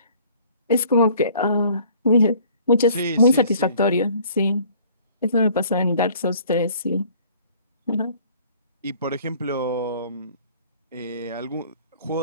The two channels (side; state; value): both; inverted; correlation -0.55